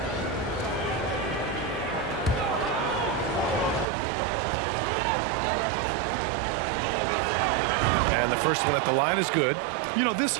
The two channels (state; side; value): drops out; left; at 3.9 s